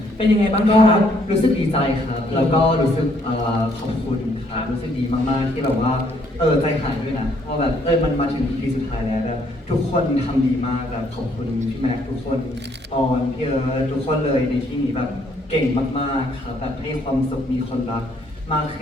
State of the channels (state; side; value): normal; both; correlation 0.67